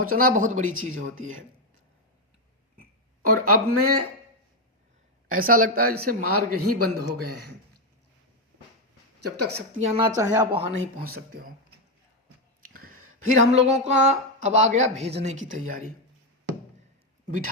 बहुत बड़ी चीज़ होती है। और अब में ऐसा लगता है जैसे मार्ग ही बंद हो गए हैं। जब तक शक्तियाँ ना चाहे आप वहाँ नहीं पहुँच सकते हो। फिर हम लोगों का अब आ गया भेजने की तैयारी।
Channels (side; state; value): both; normal; correlation 0.05